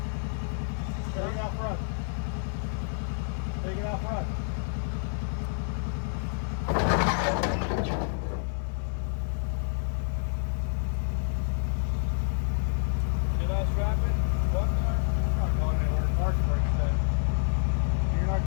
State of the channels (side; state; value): right; silent; 59 dB below the other